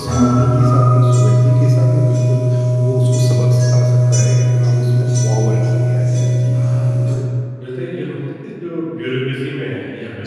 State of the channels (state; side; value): identical; both; correlation 1.00